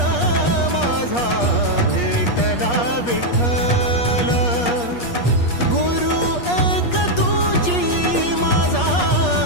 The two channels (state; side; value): late; right; 8.4 ms